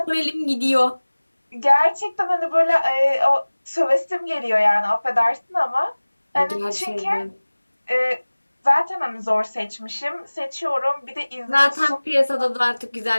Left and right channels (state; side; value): inverted; both; correlation -1.00